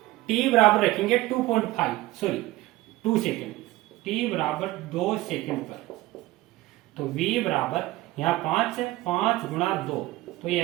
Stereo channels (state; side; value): quieter; left; 17.9 dB